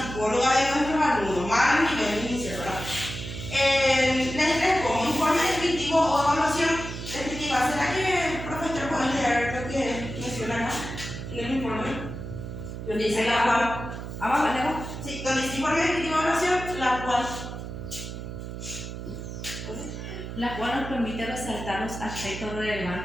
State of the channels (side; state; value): right; noise; hum, 8 dB below the sound